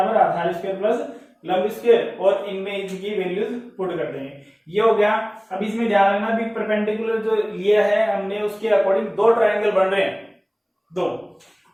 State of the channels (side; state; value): both; identical; correlation 1.00